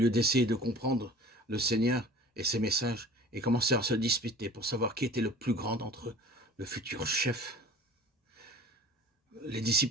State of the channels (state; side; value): normal; both; correlation 0.43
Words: d'essayer de comprendre le Seigneur et ses messages, ils commencèrent à se disputer pour savoir qui était le plus grand d'entre eux, le futur chef. Les